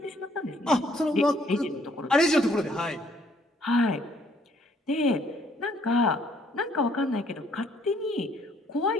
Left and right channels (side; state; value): both; normal; correlation 0.65